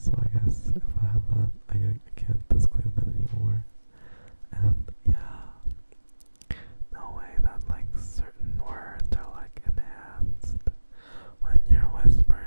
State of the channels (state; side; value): inverted; both; correlation -1.00